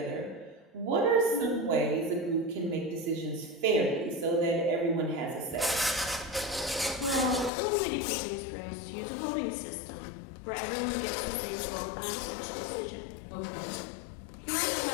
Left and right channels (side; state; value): right; drops out; at 7.5 s